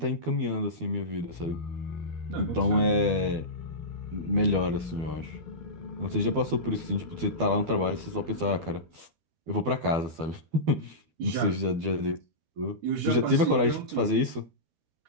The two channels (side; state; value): left; late; 12 ms